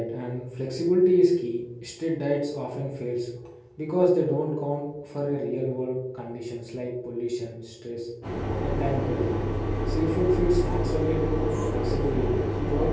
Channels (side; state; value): both; identical; correlation 1.00